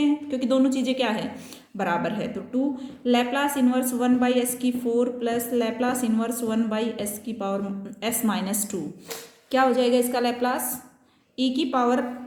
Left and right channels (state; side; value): identical; both; correlation 1.00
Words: क्योंकि दोनों चीज़ें क्या है, बराबर है। तो 2 Laplace inverse 1/s4 plus Laplace inverse 1/s की पावर s-2, क्या हो जाएगा इसका लैप्लास, e की पावर